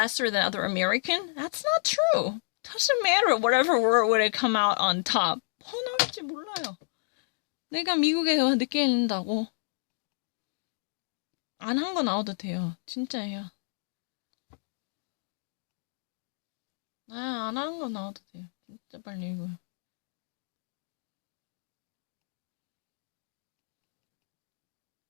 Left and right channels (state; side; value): silent; right; digital silence